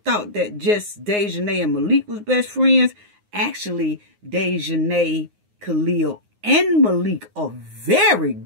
that just Daejhanae and Malik was best friends. Actually, Daejhanae, Khalil, and Malik are very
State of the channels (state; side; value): late; left; 9.6 ms